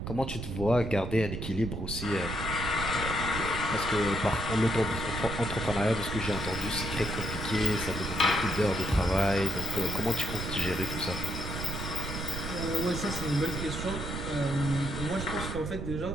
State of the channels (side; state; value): right; noise; rumble, 5 dB below the sound